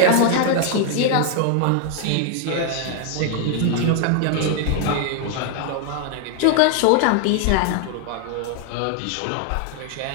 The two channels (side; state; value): both; different; correlation 0.00